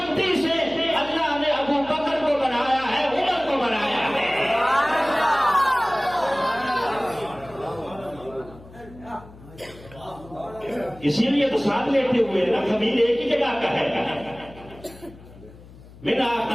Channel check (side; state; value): left; noise; hum, 20 dB below the sound